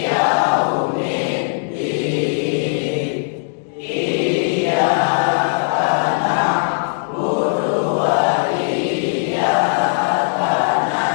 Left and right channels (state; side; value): silent; right; digital silence